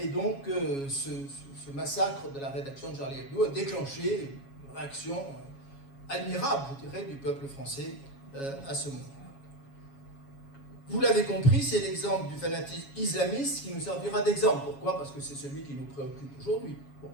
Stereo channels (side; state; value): right; late; 7.2 ms